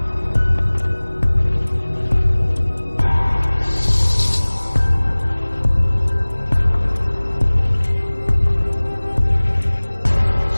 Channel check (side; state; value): both; inverted; correlation -1.00